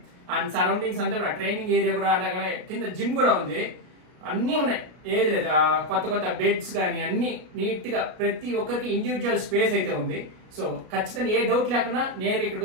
అండ్ సరౌండింగ్స్ అంతా కూడా ట్రైనింగ్ ఏరియా కూడా, అలాగే కింద జిమ్ కూడా ఉంది. అన్ని ఉన్నాయి, ఏది లేదు. కొత్త బెడ్స్ కానీ అన్ని నీట్ గా ప్రతి ఒక్కరికి ఇండివిజువల్ స్పేస్ అయితే ఉంది. సో ఖచ్చితంగా ఏ డౌట్ లేకుండా నేరుగా ఇక్కడికి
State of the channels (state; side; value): late; left; 33 ms